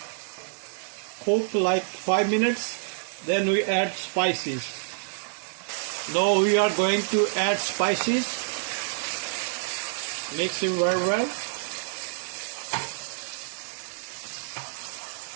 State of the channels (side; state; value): left; silent; digital silence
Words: cook like 5 minutes, then we add spices. Now we are going to add spices. Mix it very well.